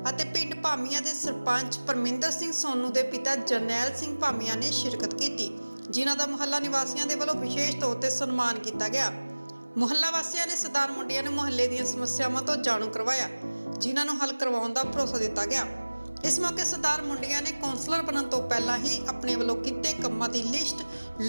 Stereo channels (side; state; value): both; inverted; correlation -1.00